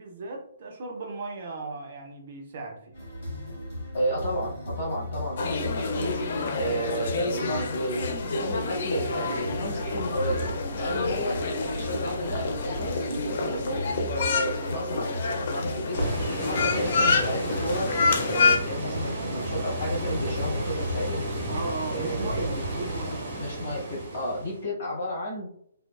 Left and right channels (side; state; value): both; inverted; correlation -0.67